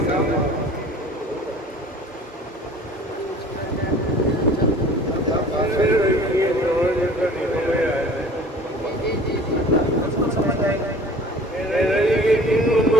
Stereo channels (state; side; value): normal; both; correlation 0.46